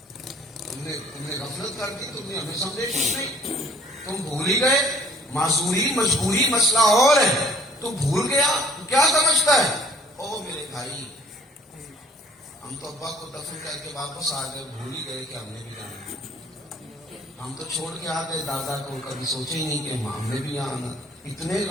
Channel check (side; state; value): both; normal; correlation 0.56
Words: تم نے غفلت کر دی، تم نے ہمیں سمجھے کچھ نہیں، تم بھول ہی گئے۔ معذوری مجبوری مسئلہ اور ہے، تو بھول گیا تو کیا سمجھتا ہے؟ او میرے بھائی ہم تو ابا کو دفن کر کے واپس آ گئے، بھول ہی گئے کہ ہم نے بھی جانا، ہم تو چھوڑ کے آ گئے دادا کو، کبھی سوچے ہی نہیں کہ ہم نے بھی یہاں آنا۔ اتنے